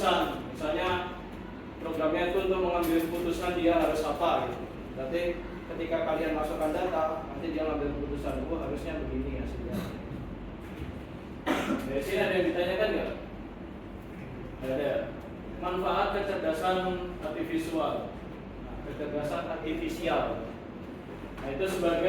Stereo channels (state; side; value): identical; both; correlation 1.00